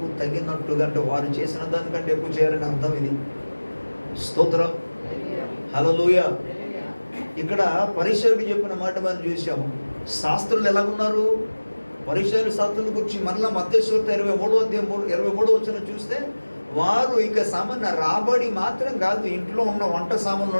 తగినట్టుగా, అంటే వారు చేసిన దానికంటే ఎక్కువ చేయాలని అర్థం. ఇది స్తోత్రం, హల్లెలూయా. ఇక్కడ పరిసయ్యుడు చెప్పిన మాట మనం చూసాము. శాస్త్రులు ఎలాగున్నారు? పరిసయ్యుల శాస్త్రుల గురించి మరలా మత్తయి సువార్త 23 వచనం చూస్తే వారు ఇక సామాన్య రాబడి మాత్రం కాదు, ఇంట్లో ఉన్న వంట సామాన్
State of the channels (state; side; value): inverted; both; correlation -1.00